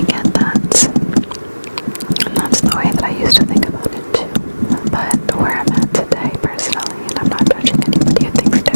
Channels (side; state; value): both; inverted; correlation -1.00